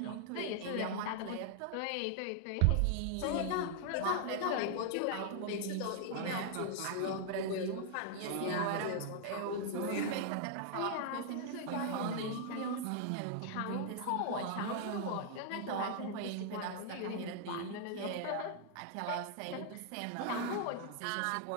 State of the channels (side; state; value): both; different; correlation 0.00